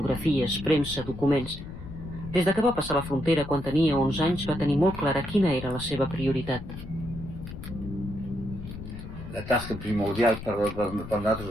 premsa, documents. Des que va passar la frontera quan tenia 11 anys va tenir molt clara quina era la seva prioritat. La tasca primordial per nosaltres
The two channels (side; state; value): left; noise; rumble, 11 dB below the sound